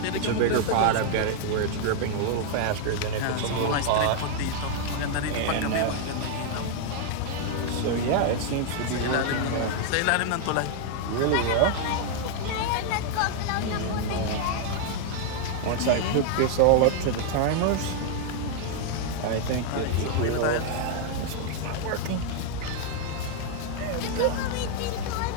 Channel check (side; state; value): both; different; correlation 0.00